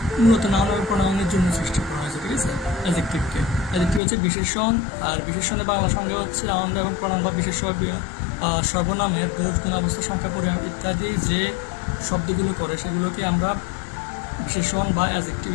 মূলত নাউন এবং প্রোনাউনের জন্য সৃষ্টি করা হয়েছে। ঠিক আছে, অ্যাডজেক্টিভ হচ্ছে বিশেষণ, আর বিশেষণের বাংলা সংজ্ঞা হচ্ছে নাউন এবং প্রোনাউন বা বিশেষ্য সর্বনামের দোষ, গুণ, অবস্থা, সংখ্যা, পরিমাপ ইত্যাদি যে শব্দগুলো করে সেগুলোকে আমরা বিশেষণ বা অ্যাডজেক্টিভ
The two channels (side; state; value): right; drops out; at 4.0 s